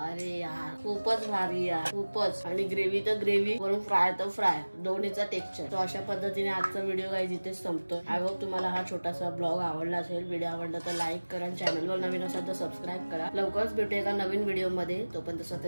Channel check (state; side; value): inverted; both; correlation -1.00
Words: अरे यार खूपच भारी यार, खूपच. आणि ग्रेव्ही तर ग्रेव्ही, वरून फ्राय तर फ्राय, दोन्हीचा टेक्स्चर. तो अशा पद्धतीने आजचा व्हिडिओ काही इथेच संपतो. आय होप तुम्हाला हा छोटासा ब्लॉग आवडला असेल. व्हिडिओ आवडला तर लाईक करा, चॅनलवर नवीन असाल तर सबस्क्राईब करा. लवकरच भेटू एका नवीन व्हिडिओ मध्ये. तोपर्यंत